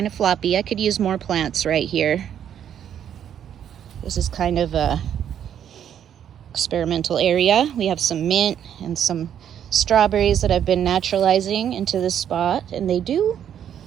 of floppy. I could use more plants right here. This is kind of a experimental area. We have some mint and some strawberries that I've been naturalizing into this spot, and they do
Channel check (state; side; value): quieter; left; 9.5 dB